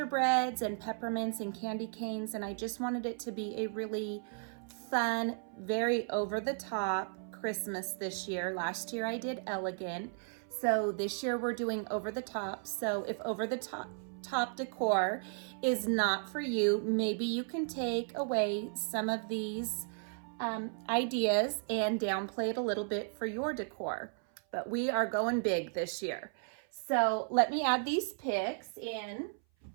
and peppermints and candy canes, and I just wanted it to be a really fun, very over-the-top Christmas this year. Last year I did elegant, so this year we're doing over-the-top. So if over-the-top decor is not for you, maybe you can take away some of these ideas and downplay it a little bit for your decor. But we are going big this year. So let me add these picks in.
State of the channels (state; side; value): silent; left; 55 dB below the other